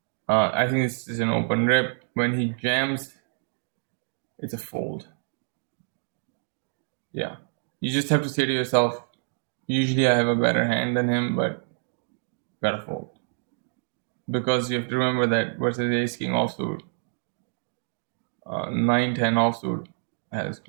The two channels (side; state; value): left; silent; digital silence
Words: I think this is an open rip. When he jams, it's a fold. Yeah, you just have to say to yourself, usually I have a better hand than him, but gotta fold. Because you have to remember that versus ace king offsuit, 9-10 offsuit has